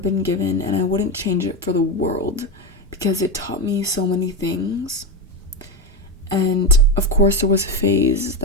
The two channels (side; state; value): both; normal; correlation 0.15